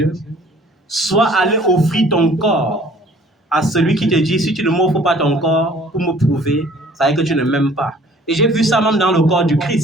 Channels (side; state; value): both; normal; correlation 0.54